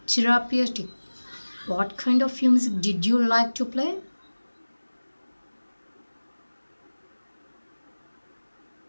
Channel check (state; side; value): inverted; both; correlation -1.00